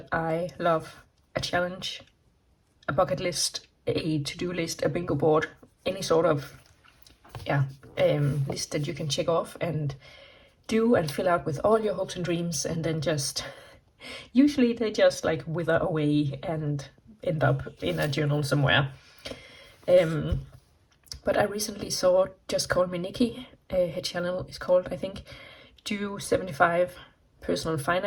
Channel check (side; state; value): both; identical; correlation 1.00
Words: I love a challenge, a bucket list, a to-do list, a bingo board, any sort of yeah list that you can check off and do and fill out with all your hopes and dreams, and then just usually they just like wither away and end up in a journal somewhere. But I recently saw Just Call Me Nikki. Her channel is called, I think, Do 75 Personal